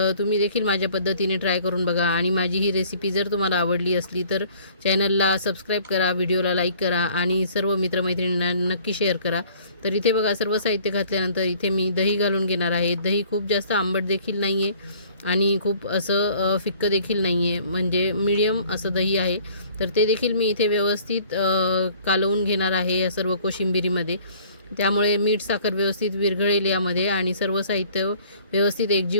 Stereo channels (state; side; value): inverted; both; correlation -0.54